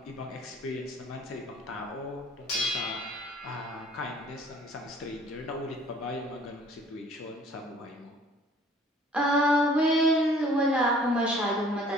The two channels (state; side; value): normal; both; correlation 0.54